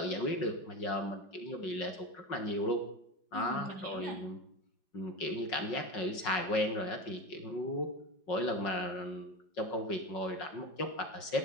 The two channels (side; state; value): right; late; 5.5 ms